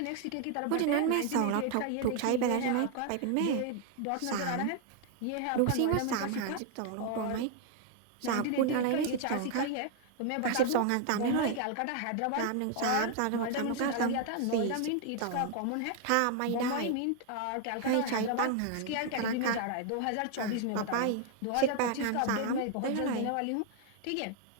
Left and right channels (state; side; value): different; both; correlation 0.00